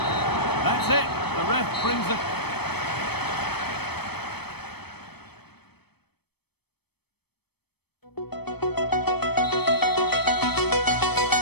That's it. The ref brings it.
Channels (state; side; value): late; right; 0.97 ms